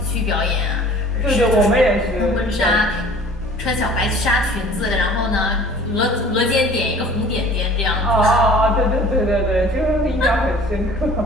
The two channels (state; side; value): normal; both; correlation 0.48